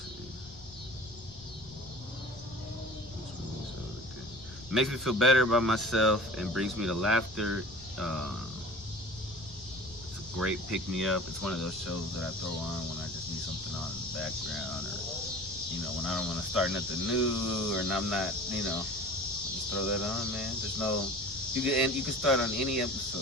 It makes me feel better about myself and brings me to laughter. It's a great pick-me-up. It's one of those shows that I throw on when I just need something on in the background, or when I don't want to start nothing new, or I'm not, just throw that on, man. There's no, you can start on any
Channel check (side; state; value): left; noise; rumble, 19 dB below the sound